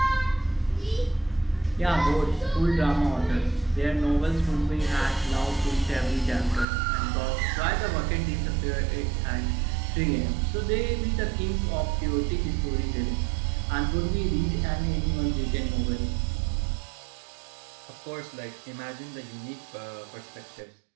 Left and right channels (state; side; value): drops out; left; at 6.7 s